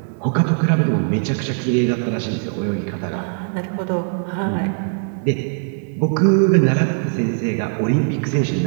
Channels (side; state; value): left; silent; 65 dB below the other